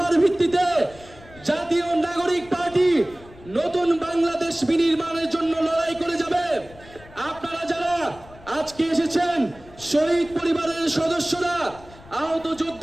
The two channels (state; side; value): noise; left; rumble, 22 dB below the sound